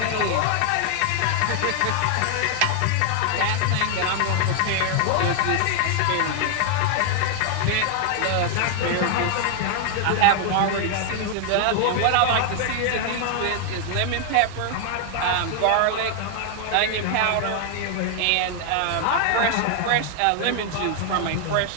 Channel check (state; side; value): different; both; correlation 0.00